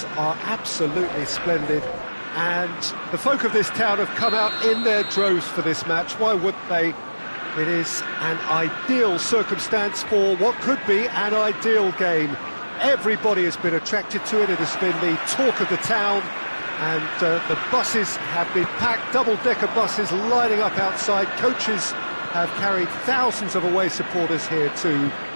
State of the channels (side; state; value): both; inverted; correlation -1.00